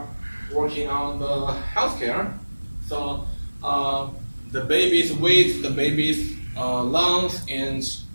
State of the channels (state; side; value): inverted; both; correlation -1.00